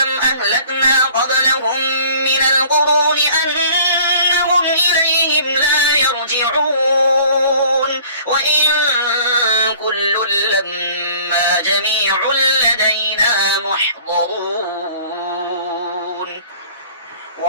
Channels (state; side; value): inverted; both; correlation -0.51